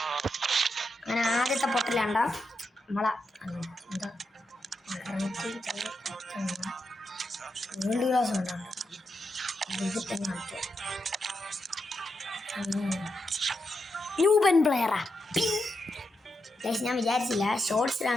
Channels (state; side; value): normal; both; correlation 0.85